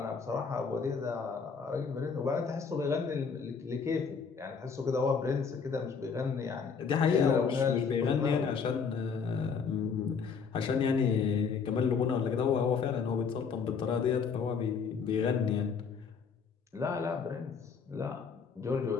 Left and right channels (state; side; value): quieter; right; 5.8 dB